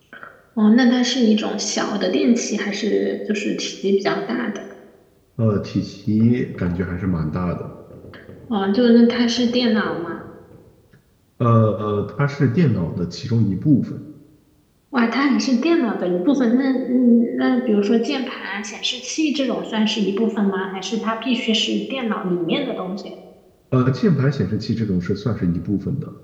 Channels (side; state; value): both; identical; correlation 1.00